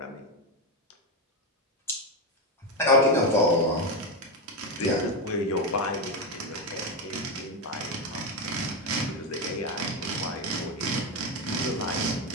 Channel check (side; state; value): both; normal; correlation 0.10